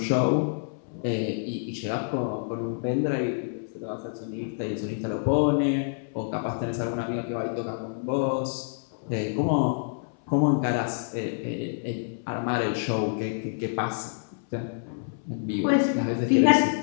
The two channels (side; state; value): right; silent; 60 dB below the other